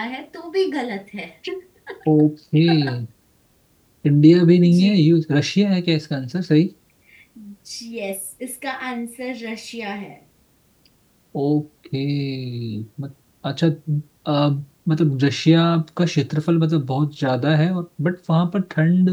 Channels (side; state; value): both; identical; correlation 1.00